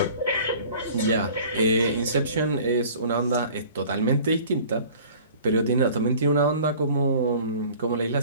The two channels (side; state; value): both; inverted; correlation -0.47